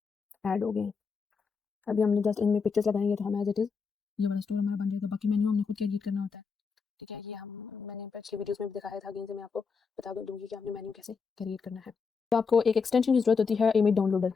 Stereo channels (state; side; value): quieter; right; 5.3 dB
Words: ऐड हो गए हैं। अभी हमने जस्ट इनमें पिक्चर्स लगाएंगे तो हम एज इट इज़ ये वाला स्टोर हमारा बन जाएगा। बाकी मेन्यू हमने खुद क्रिएट करना होता है, ठीक है। ये हम मैंने पिछली वीडियोस में भी दिखाया था, अगेन से मैं आपको बता दूंगी कि आपने मेन्यू कैसे क्रिएट करना है। तो आपको एक एक्सटेंशन की जरूरत होती है, इमेज डाउनलोडर,